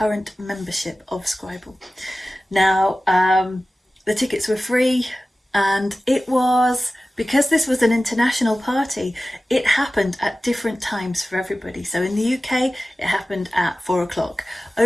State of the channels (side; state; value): both; normal; correlation 0.96